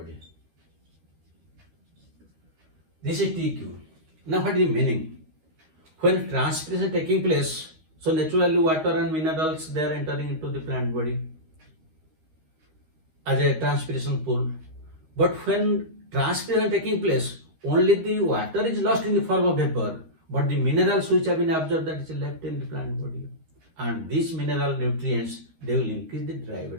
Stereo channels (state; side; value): late; left; 13 ms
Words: This is TQ. Now what is the meaning? When transpiration is taking place, so naturally water and minerals, they are entering into the plant body as a transpiration pool. But when transpiration is taking place, only the water is lost in the form of vapor, but the minerals which have been absorbed, that is left in the plant body. And these mineral nutrients, they will increase the dry